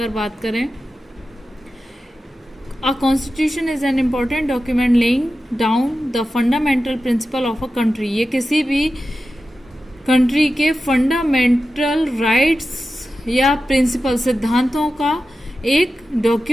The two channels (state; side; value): normal; both; correlation 0.92